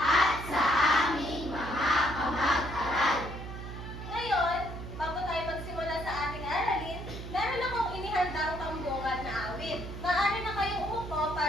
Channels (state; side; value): noise; right; hum, 9 dB below the sound